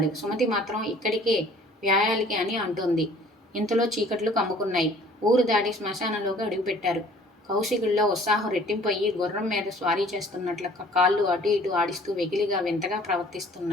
సుమతి మాత్రం ఇక్కడికే వ్యాయాలికి అని అంటోంది. ఇంతలో చీకట్లు కమ్ముకున్నాయి. ఊరు దాటి శ్మశానంలోకి అడుగుపెట్టారు. కౌశికుల్లో ఉత్సాహం రెట్టింపయ్యి గుర్రం మీద స్వారీ చేస్తున్నట్లు కాళ్ళు అటు ఇటు ఆడిస్తూ వెకిలిగా వింతగా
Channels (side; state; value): both; normal; correlation 0.53